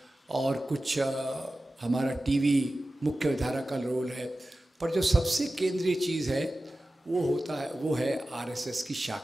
और कुछ हमारा टीवी मुख्य धारा का रोल है, पर जो सबसे केंद्रीय चीज़ है वो है आरएसएस की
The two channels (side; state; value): both; normal; correlation 0.95